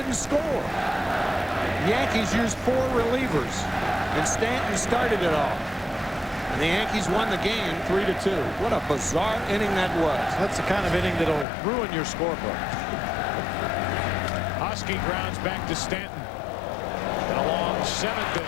score. The Yankees used 4 relievers, and Stanton started it all. And the Yankees won the game 3-2. What a bizarre inning that was. That's the kind of inning that'll ruin your scorebook. Husky grounds back to Stanton. And a long 7th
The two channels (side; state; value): right; drops out; at 11.5 s